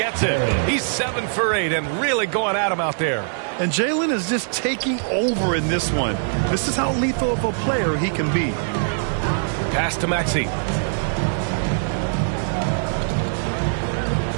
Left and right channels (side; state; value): left; silent; digital silence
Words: it. He's 7 for 8 and really going at him out there. And Jalen is just taking over in this one. This is how lethal of a player he can be. Pass to Maxey.